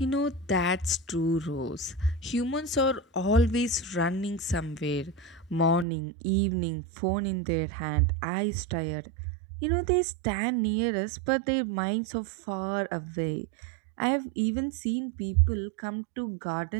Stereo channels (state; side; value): drops out; left; at 5.9 s